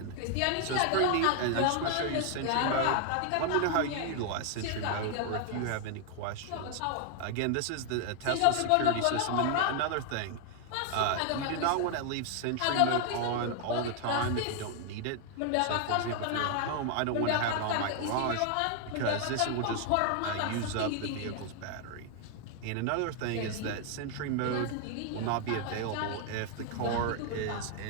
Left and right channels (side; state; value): both; different; correlation 0.00